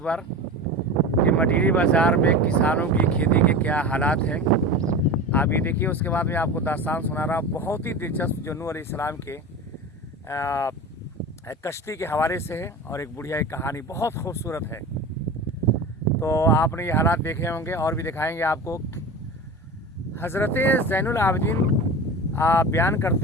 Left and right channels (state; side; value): normal; both; correlation 0.30